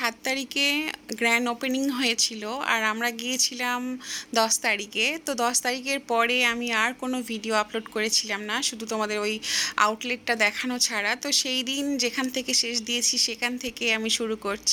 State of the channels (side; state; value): both; identical; correlation 1.00